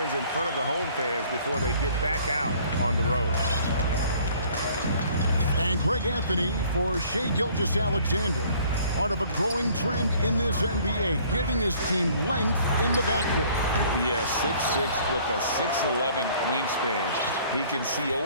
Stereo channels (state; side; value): inverted; both; correlation -0.56